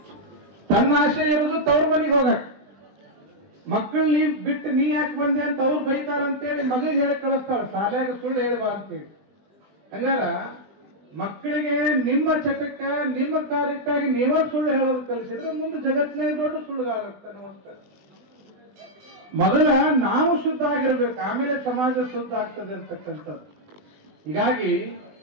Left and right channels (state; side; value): late; left; 20 ms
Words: ತನ್ನ ಆಸೆ ಇರೋದು ತವ್ರ ಮನೆಗೆ ಹೋಗಕ್. ಮಕ್ಕಳು ನೀ ಬಿಟ್ಟು ನೀ ಯಾಕೆ ಬಂದೆ ಅಂತ ಅವ್ರು ಬೈತಾರಂತೇಳಿ ಮಗ ಹೇಳಿ ಕಳಿಸ್ತಾಳ, ಶಾಲ್ಯಾಗ ಸುಳ್ಳು ಹೇಳ್ಬಾ ಅಂತೇಳಿ. ಹಂಗಾರ ಮಕ್ಕಳಿಗೆ ನಿಮ್ಮ ಚಟಕ್ಕ ನಿಮ್ಮ ಕಾರ್ಯಕ್ಕಾಗಿ ನೀವೇ ಸುಳ್ಳು ಹೇಳೋದು ಕಲಿಸಿದ್ರೆ ಮುಂದೆ ಜಗತ್ತಿನಾಗ ದೊಡ್ಡ ಸುಳ್ಳುಗಾರಾಗ್ತಾನೆ. ಮೊದಲ ನಾವು ಶುದ್ಧ ಆಗಿರ್ಬೇಕು, ಆಮೇಲೆ ಸಮಾಜ ಶುದ್ಧ ಆಗ್ತದೆ ಅಂತಕ್ಕಂಥದ್ದು. ಹೀಗಾಗಿ